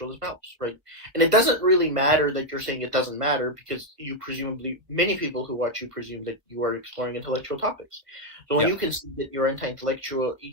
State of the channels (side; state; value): left; late; 1.4 ms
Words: as mouse, right? And it doesn't really matter that you're saying it doesn't matter because many people who watch you presume that you are exploring intellectual topics. So when you can see that you're anti-intellectual,